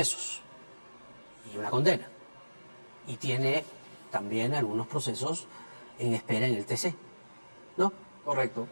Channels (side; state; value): both; inverted; correlation -1.00